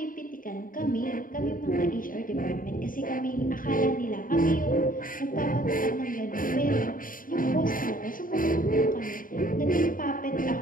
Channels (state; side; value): late; right; 0.40 ms